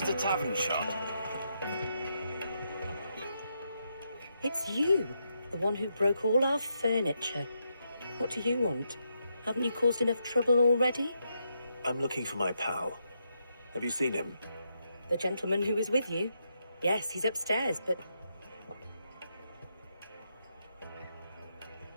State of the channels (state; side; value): inverted; both; correlation -0.81